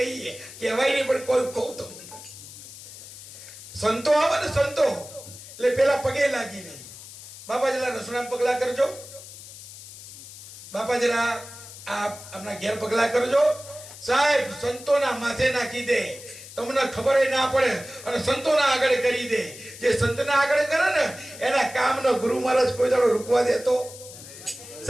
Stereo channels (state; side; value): noise; left; hiss, 15 dB below the sound